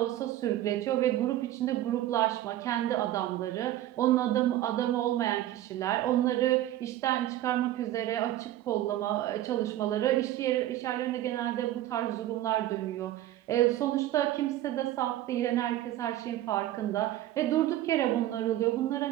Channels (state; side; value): quieter; left; 13.9 dB